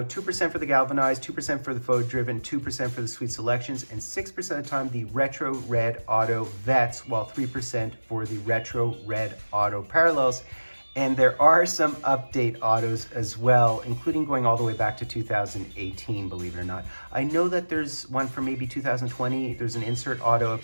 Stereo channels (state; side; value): inverted; both; correlation -1.00